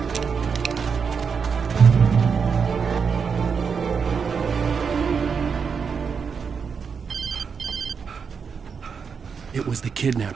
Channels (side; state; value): left; quieter; 6.0 dB